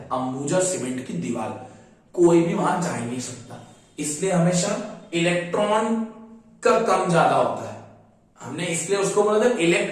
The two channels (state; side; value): identical; both; correlation 1.00